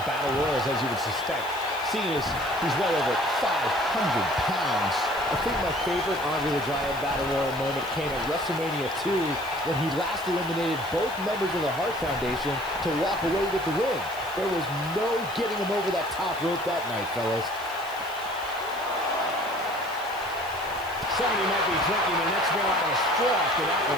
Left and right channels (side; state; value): right; noise; hiss, 18 dB below the sound